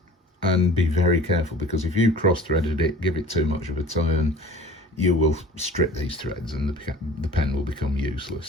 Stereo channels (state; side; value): normal; both; correlation 0.43